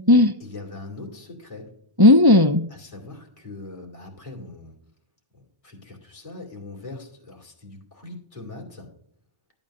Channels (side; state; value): left; late; 1.1 ms